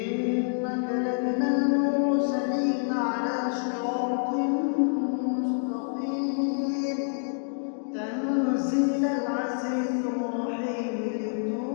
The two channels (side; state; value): right; silent; digital silence